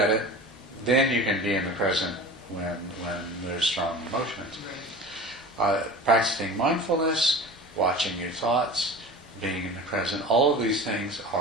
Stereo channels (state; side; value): normal; both; correlation 0.36